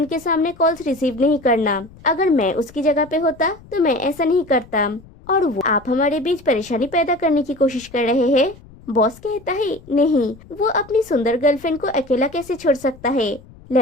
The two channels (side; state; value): left; noise; rumble, 23 dB below the sound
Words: के सामने कॉल्स रिसीव नहीं करना। अगर मैं उसकी जगह पे होता तो मैं ऐसा नहीं करता। और वो आप हमारे बीच परेशानी पैदा करने की कोशिश कर रहे हैं। बॉस कहता है, नहीं, वो अपनी सुंदर गर्लफ्रेंड को अकेला कैसे छोड़ सकता है।